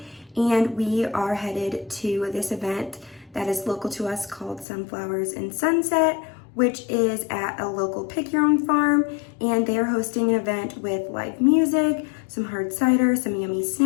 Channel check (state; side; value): drops out; right; at 4.7 s